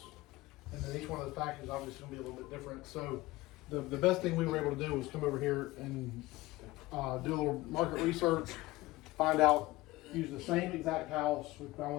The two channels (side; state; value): right; quieter; 19.2 dB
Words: and then each one of those packages obviously going to be a little bit different. So the best thing we were able to do was come over here and do a little market research, find out, use the same exact house. We found